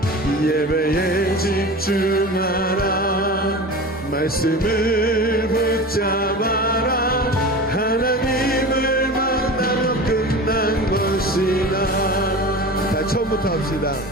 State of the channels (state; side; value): normal; both; correlation 0.33